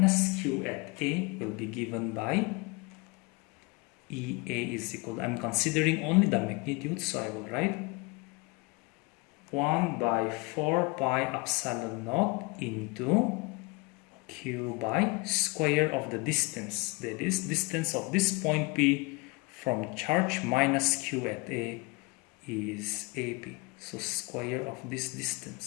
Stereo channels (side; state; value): right; quieter; 26.3 dB